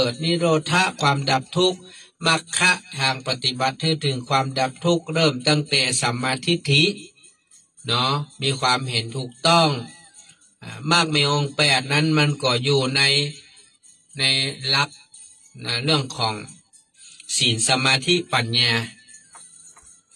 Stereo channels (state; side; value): identical; both; correlation 1.00